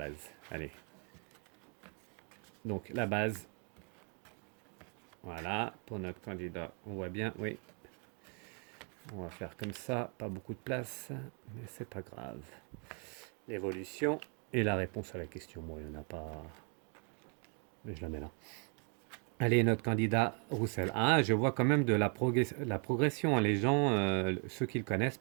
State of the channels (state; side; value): quieter; left; 38.9 dB